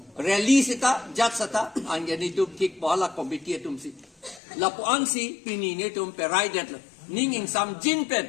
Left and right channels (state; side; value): drops out; right; at 4.4 s